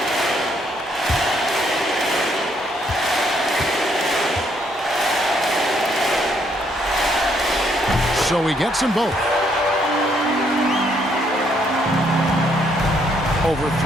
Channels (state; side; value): normal; both; correlation 0.70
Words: So he gets them both. Over